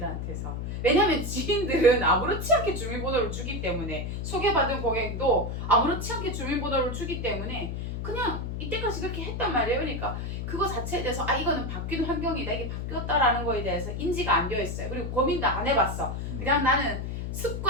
왜냐면 지인들은 아무렇지 않게 주민번호를 주기 때문에 소개받은 고객도 아무렇지 않게 주민번호를 주기 때문에 그냥 이때까지 그렇게 했단 말이에요. 그러니까 그거 자체에 대해서 이거는 바뀐 환경이다. 이게 바뀌었다라는 거에 대해서 인지가 안 되어 있어요. 그리고 고민도 안 해봤어. 그냥 나는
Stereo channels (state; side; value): noise; left; hum, 4 dB below the sound